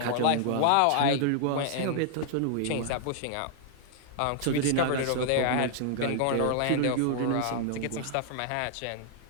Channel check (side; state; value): both; different; correlation -0.01